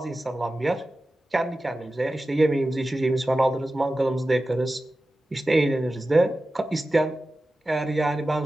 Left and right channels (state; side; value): normal; both; correlation 0.94